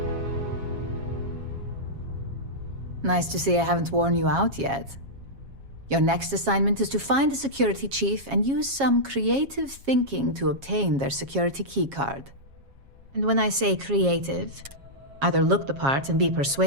Nice to see I haven't worn you out yet. Your next assignment is to find a security chief and use some creative thinking to obtain their security keycard. And when I say creative, either look the part and be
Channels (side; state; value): left; late; 7.3 ms